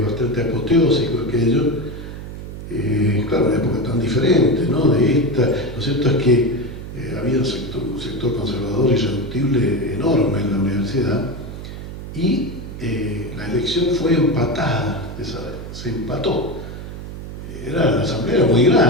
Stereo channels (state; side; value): noise; right; hum, 10 dB below the sound